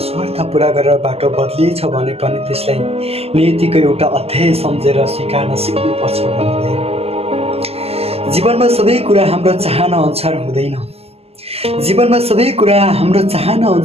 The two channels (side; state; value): left; late; 0.29 ms